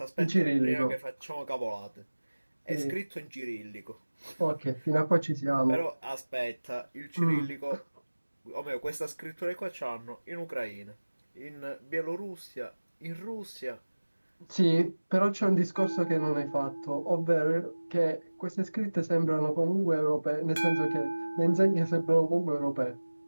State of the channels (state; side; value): inverted; both; correlation -1.00